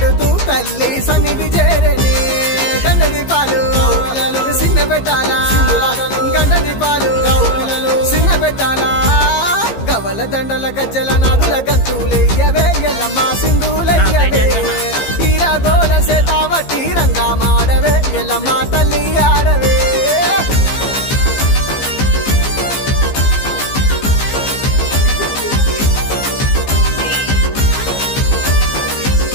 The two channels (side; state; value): right; late; 15 ms